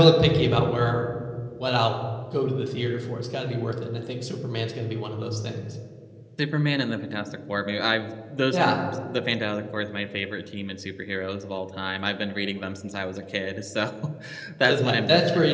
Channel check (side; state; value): both; identical; correlation 1.00